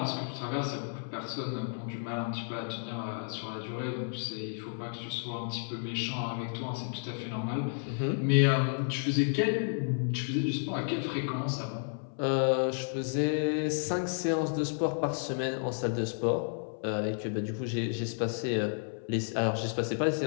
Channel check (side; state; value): right; silent; 56 dB below the other